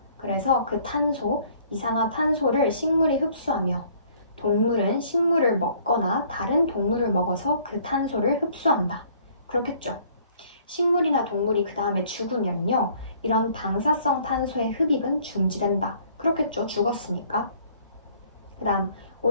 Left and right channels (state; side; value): inverted; both; correlation -0.58